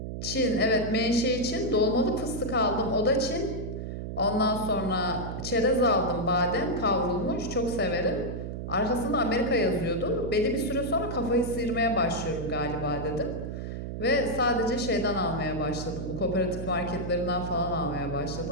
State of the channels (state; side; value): noise; right; hum, 6 dB below the sound